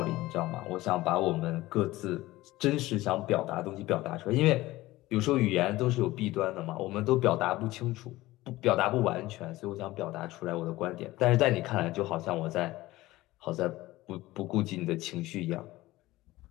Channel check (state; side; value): quieter; right; 17.9 dB